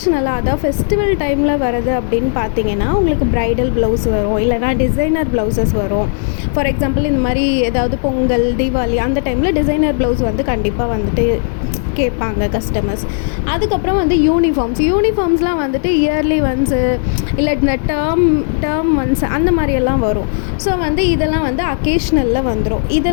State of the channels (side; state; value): right; silent; 70 dB below the other